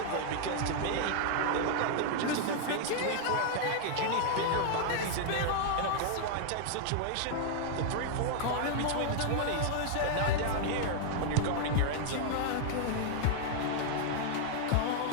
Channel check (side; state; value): both; different; correlation -0.01